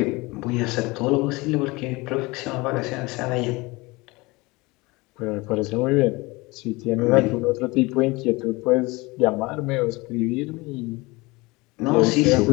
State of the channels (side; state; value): right; quieter; 23.5 dB